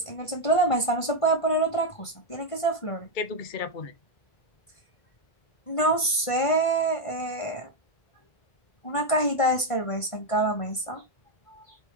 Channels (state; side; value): late; right; 1.5 ms